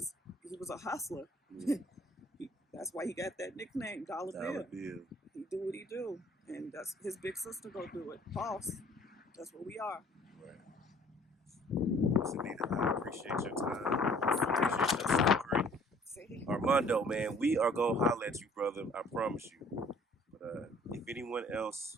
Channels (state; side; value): normal; both; correlation 0.55